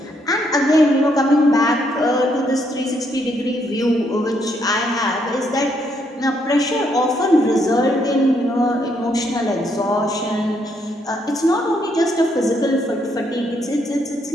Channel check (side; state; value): both; normal; correlation 0.74